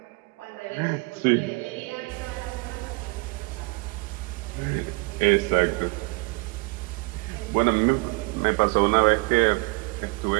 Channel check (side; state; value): left; quieter; 27.7 dB